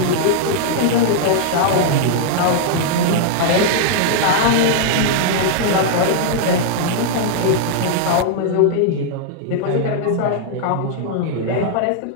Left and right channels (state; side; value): different; both; correlation -0.01